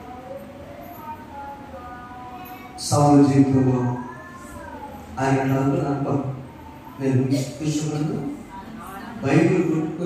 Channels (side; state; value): both; identical; correlation 1.00